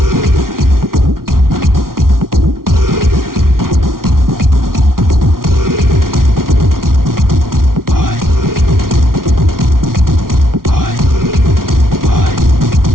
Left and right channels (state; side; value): late; left; 0.92 ms